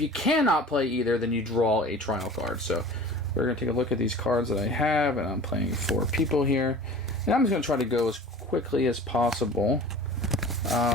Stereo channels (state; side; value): normal; both; correlation 0.41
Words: play either, then you draw a trial card. So we're going to take a look at these cards that I have, and I'm playing 4 people here, and I'm just going to try to go as quickly as possible.